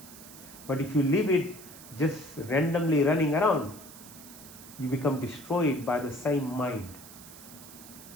But if you leave it just randomly running around, you become destroyed by the same mind.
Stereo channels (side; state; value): right; noise; hiss, 17 dB below the sound